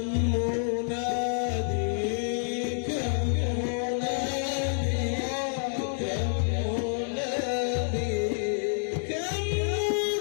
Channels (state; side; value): silent; right; 59 dB below the other